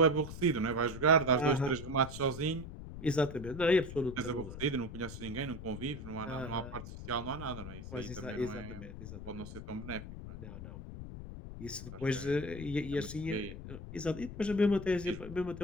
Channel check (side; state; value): left; noise; rumble, 10 dB below the sound